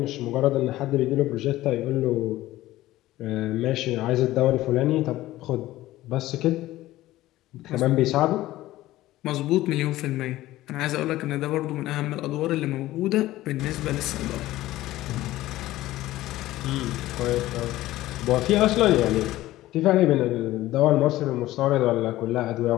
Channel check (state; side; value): quieter; right; 16.1 dB